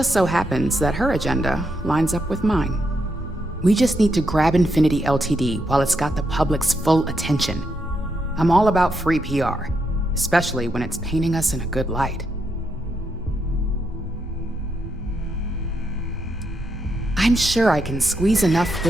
so happens that her agenda lines up with mine. We just need to grab Infinity Ltd. while it's got the public's full attention. I'm all about free PR, especially when it's painting us in a good light. I'm sure I can squeeze enough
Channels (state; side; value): normal; both; correlation 0.81